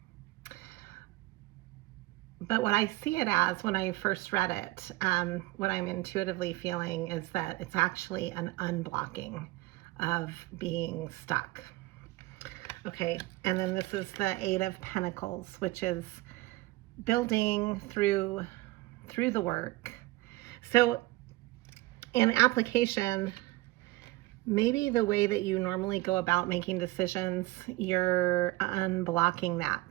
But what I see it as when I first read it, what I'm intuitively feeling is that it's actually an unblocking of being stuck. Okay, and then this is the 8 of Pentacles, which is building through the work. So in application, maybe the way that you normally go about making decisions, you're unblocking that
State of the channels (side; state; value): left; quieter; 20.0 dB